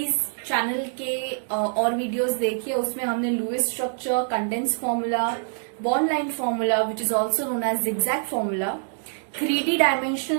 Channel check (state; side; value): silent; left; digital silence